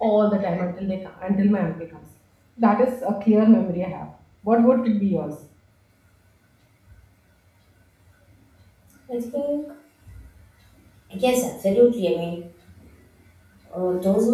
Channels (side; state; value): both; identical; correlation 1.00